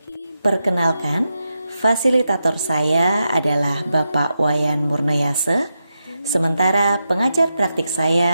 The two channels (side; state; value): both; inverted; correlation -0.88